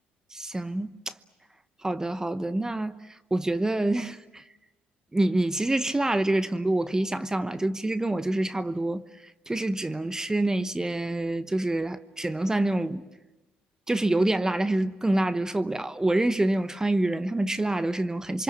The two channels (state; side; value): normal; both; correlation 0.97